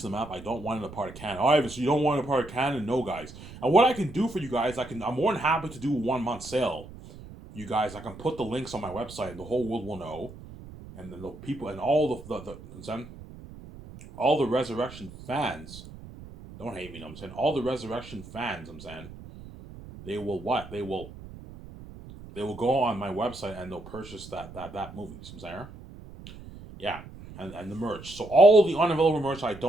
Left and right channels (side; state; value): right; noise; rumble, 16 dB below the sound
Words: the map. I don't want it a part of canon. Oh, Ivan, so you don't want it a part of canon? No, guys. And what I can do for you guys, I'm more than happy to do a 1-month sale. You guys, I can put the links on my website, and the whole world will know. And then the people and all all the Resurrection fans, don't hate me. No, I'm saying all the Resurrection fans. I'm saying they will what? They will go on my website and they'll purchase that movie. I'm saying, yeah. And the merch. So all the unavailable merch I